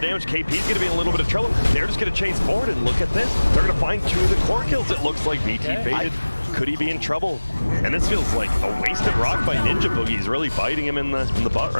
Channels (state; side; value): inverted; both; correlation -1.00